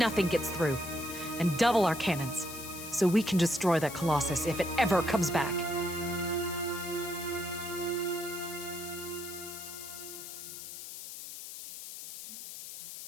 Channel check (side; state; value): left; noise; hiss, 10 dB below the sound